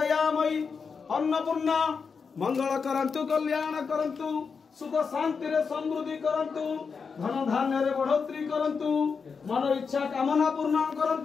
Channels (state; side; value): quieter; right; 5.5 dB